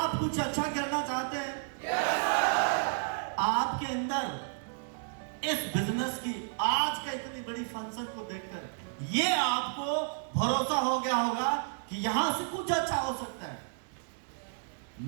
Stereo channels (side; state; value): left; silent; digital silence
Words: कुछ अच्छा करना चाहते हैं? आपके अंदर इस बिजनेस की आज का इतनी बड़ी फंक्शन को देखकर ये आपको भरोसा हो गया होगा कि यहां से कुछ अच्छा हो सकता है।